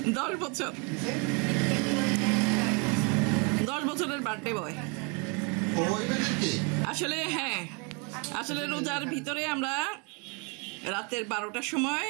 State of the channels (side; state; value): left; quieter; 33.1 dB